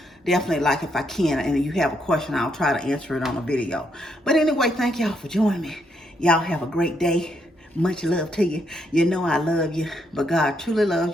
definitely, like, if I can and you have a question, I'll try to answer it on a video. But anyway, thank y'all for joining me. Y'all have a great day. Much love to you. You know I love you, but God truly loves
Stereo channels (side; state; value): both; normal; correlation 0.76